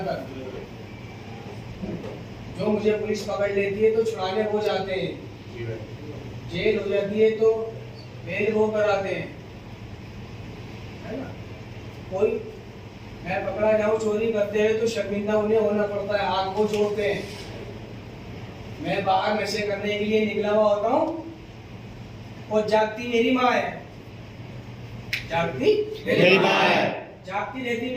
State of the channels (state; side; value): identical; both; correlation 1.00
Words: जो मुझे पुलिस पकड़ लेती है तो छुड़ाने वो जाते हैं, जी भाई। जेल हो जाती है तो बेल वो कराते हैं, है ना? कोई मैं पकड़ा जाऊं चोरी करते हुए तो शर्मिंदा उन्हें होना पड़ता है, हाथ को जोड़ते हैं। मैं बाहर नशे करने के लिए निकला हुआ होता हूँ और जागती मेरी माँ है, जागती मेरी माँ है, जागती रहती